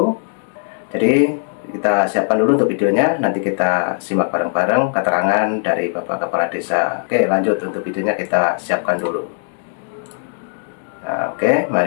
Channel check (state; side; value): silent; right; 67 dB below the other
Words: Jadi kita siapkan dulu untuk videonya. Nanti kita simak bareng-bareng keterangan dari Bapak Kepala Desa. Oke, lanjut untuk videonya kita siapkan dulu. Nah, oke,